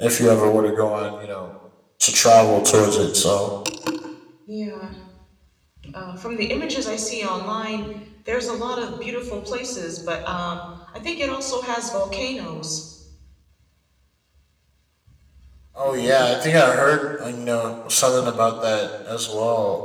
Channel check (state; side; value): identical; both; correlation 1.00